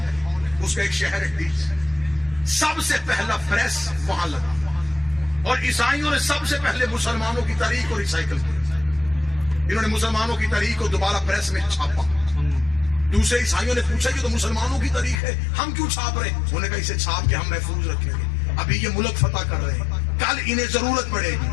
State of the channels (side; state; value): right; drops out; at 15.2 s